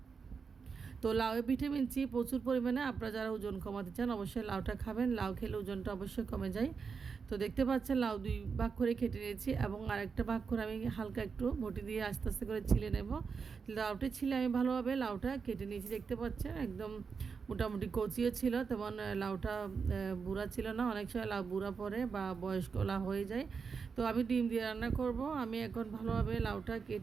তো লাউয়ে ভিটামিন সি প্রচুর পরিমাণে। আপনারা যারা ওজন কমাতে চান অবশ্যই লাউটা খাবেন। লাউ খেলে ওজনটা অবশ্যই কমে যায়। তো দেখতে পাচ্ছেন লাউ দুই ভাগ করে কেটে নিয়েছি এবং আরেকটা ভাগ করে আমি হালকা একটু বটি দিয়ে আস্তে আস্তে করে ছিলে নেব। লাউটা ছিলে আমি ভালোভাবে লাউটা কেটে নিয়েছি। দেখতে পাচ্ছেন একদম মোটামুটি কচিও ছিল, তেমন লাউটা বুড়া ছিল না। অনেক সময় লাউ বুড়া পড়ে বা বয়স্ক লাউ হয়ে যায়। তো আমি ডিম দিয়ে রান্না করব। আমি এখন ভালোভাবে লাউটা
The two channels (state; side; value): quieter; left; 5.5 dB